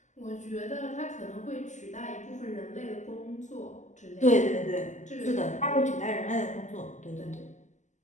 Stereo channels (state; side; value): late; right; 0.34 ms